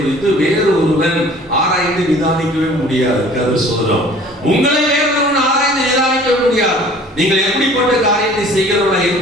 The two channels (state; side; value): normal; both; correlation 0.50